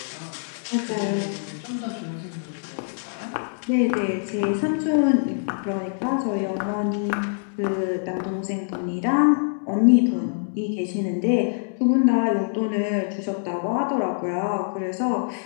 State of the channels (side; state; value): right; silent; digital silence